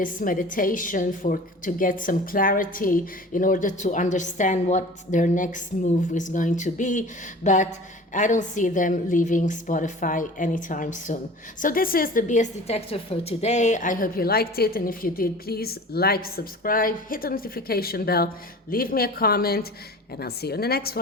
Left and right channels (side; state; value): both; normal; correlation 0.41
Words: meditation to get some clarity in order to understand what their next move is going to be. But I don't see them leaving Spotify anytime soon. So this is the BS Detector for today. I hope you liked it. And if you did, please like, subscribe, hit the notification bell, leave me a comment, and I'll see you in the next